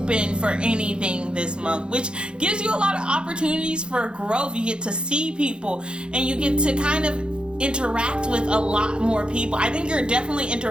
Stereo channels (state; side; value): late; left; 0.052 ms